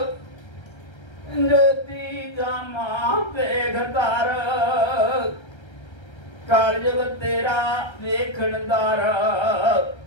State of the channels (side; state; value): right; late; 1.3 ms